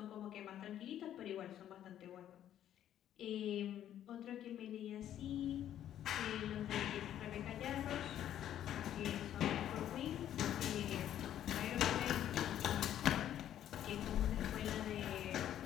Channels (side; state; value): right; quieter; 11.1 dB